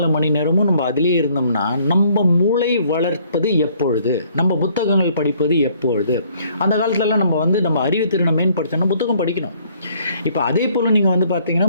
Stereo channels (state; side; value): inverted; both; correlation -0.63